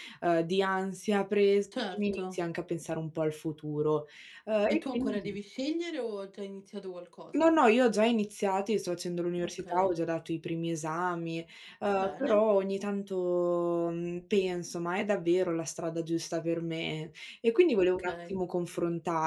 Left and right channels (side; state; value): both; identical; correlation 1.00